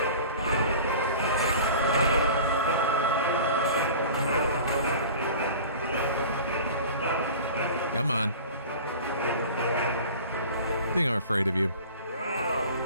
Come on. I think I'm afraid of you.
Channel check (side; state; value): both; inverted; correlation -0.40